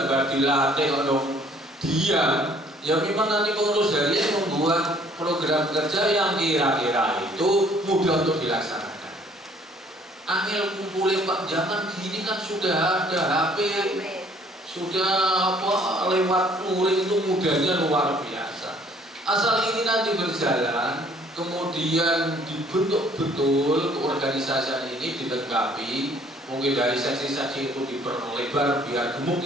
dilatih untuk diam. Ya memang nanti pengurus harian membuat program kerja yang kira-kira itu mudah untuk dilaksanakan. Angel kumpulin Pak zaman gini kan sudah ada HP. Sudah lewat luring itu mudahnya luar biasa. Asal ini nanti berjalan, kemudian dibentuk betul keorganisasian ini dilengkapi Mungkin dari seksi-seksi itu diperlebar biar gemuk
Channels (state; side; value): normal; both; correlation 0.59